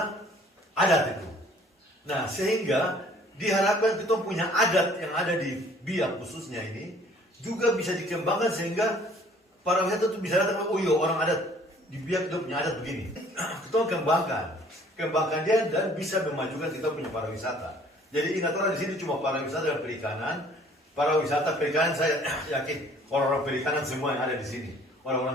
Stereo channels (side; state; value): both; normal; correlation 0.56